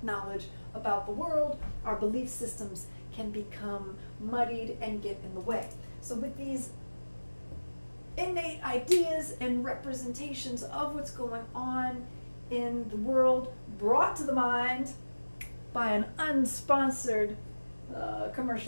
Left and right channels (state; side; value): inverted; both; correlation -1.00